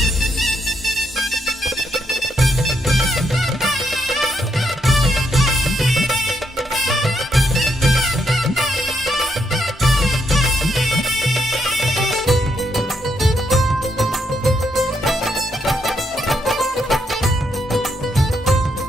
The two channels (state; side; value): normal; both; correlation 0.77